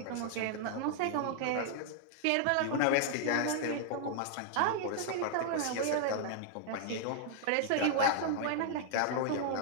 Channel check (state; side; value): different; both; correlation -0.01